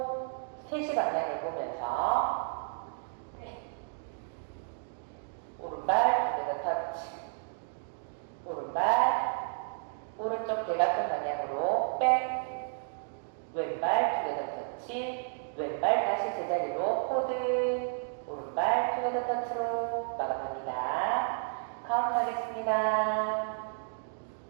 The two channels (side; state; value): left; silent; digital silence